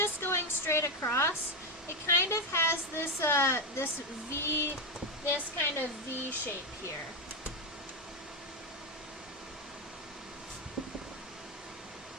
going straight across, it kind of has this kind of V shape here.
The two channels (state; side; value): normal; both; correlation 0.08